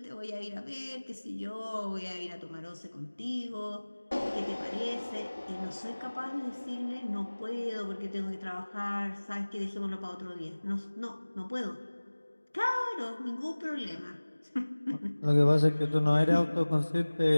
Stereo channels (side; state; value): both; inverted; correlation -1.00